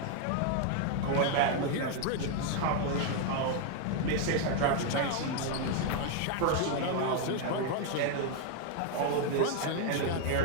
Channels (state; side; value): different; both; correlation 0.00